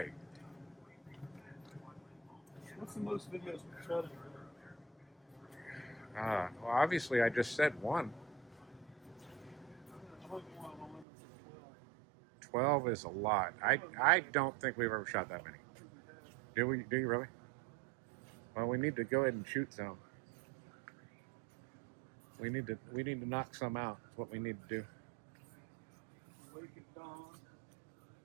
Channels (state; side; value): drops out; left; at 11.1 s